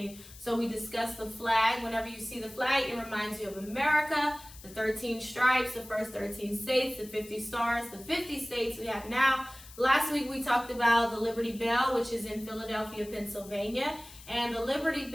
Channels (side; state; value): left; noise; hiss, 19 dB below the sound